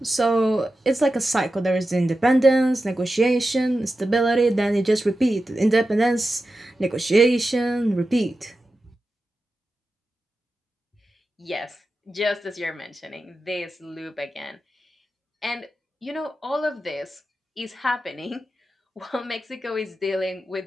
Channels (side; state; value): both; normal; correlation 0.91